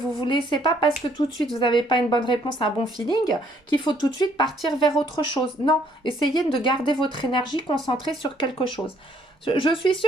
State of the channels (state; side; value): normal; both; correlation 0.65